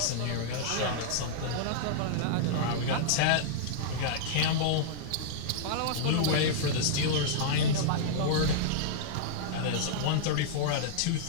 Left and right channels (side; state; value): both; different; correlation -0.02